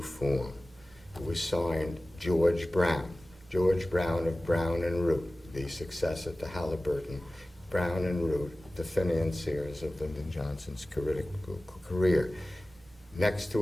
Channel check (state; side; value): normal; both; correlation 0.96